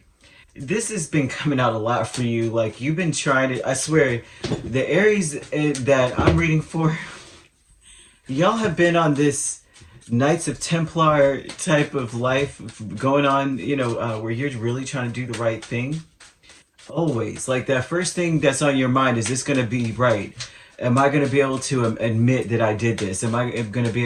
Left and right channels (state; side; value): identical; both; correlation 1.00